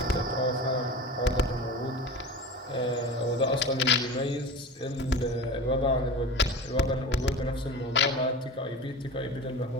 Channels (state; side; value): normal; both; correlation 0.31